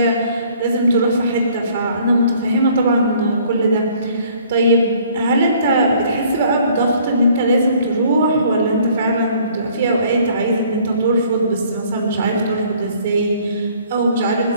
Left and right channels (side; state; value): both; inverted; correlation -0.58